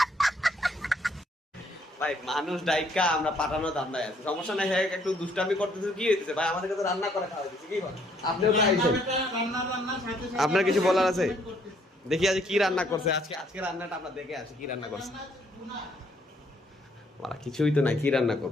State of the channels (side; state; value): both; normal; correlation 0.66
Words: ভাই মানুষ ডাইকা আমরা পাঠানো ধান্দায় আছে, সমস্যা নাই। হ্যাঁ একটু দুষ্টামি করতেছে, কি হইতেছে ভাই? আমাদেরকে তো রান্না করে খাওয়া দিচ্ছে, কি বল? আপনিও তো আইছেন, আপনার কিছু বলার আছে? দেখি আজ কি রান্না করছে আজকে, আজকে রান্নাটা আমরা দেখে আসি কি রান্না করছে। মারা কিছুই তো নাই, কি রান্না